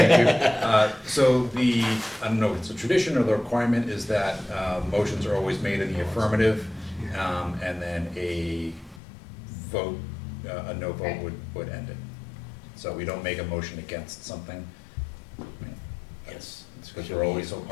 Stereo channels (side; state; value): right; drops out; at 9.0 s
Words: you. So the, I don't know if it's a tradition or the requirement is that motions are always made in the affirmative, and then a vote, a no vote would end it. So we don't make a motion against something. Yes. It's because we're always so